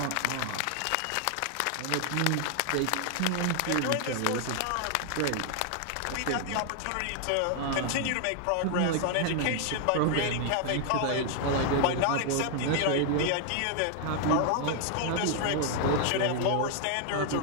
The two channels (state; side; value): different; both; correlation 0.00